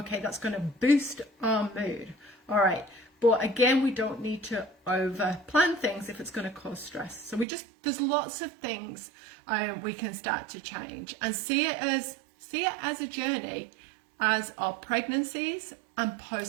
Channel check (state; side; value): drops out; left; at 7.5 s